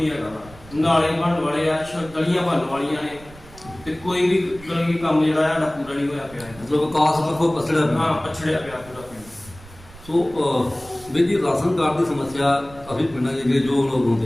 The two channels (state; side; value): noise; right; rumble, 21 dB below the sound